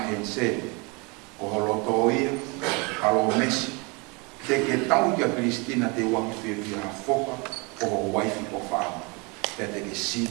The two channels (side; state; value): left; quieter; 29.5 dB